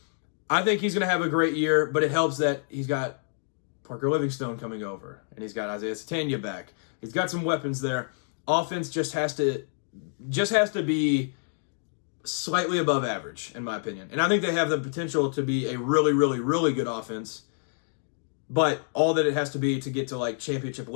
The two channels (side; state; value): right; silent; digital silence